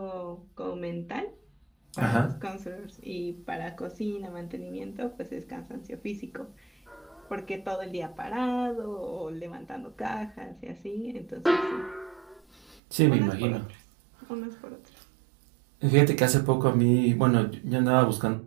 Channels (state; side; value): drops out; left; at 12.8 s